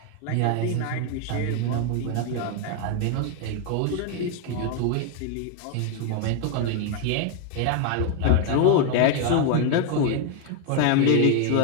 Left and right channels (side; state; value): both; different; correlation 0.01